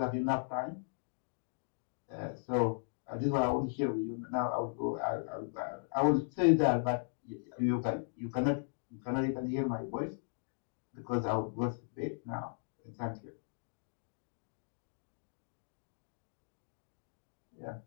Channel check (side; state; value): right; silent; digital silence